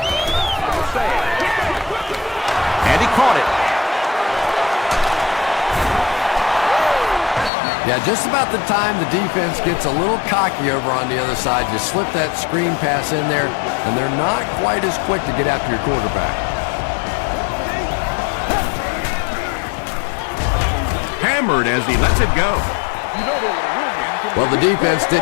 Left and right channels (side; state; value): right; drops out; at 7.5 s